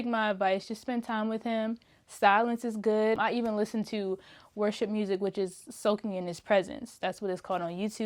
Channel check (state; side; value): identical; both; correlation 1.00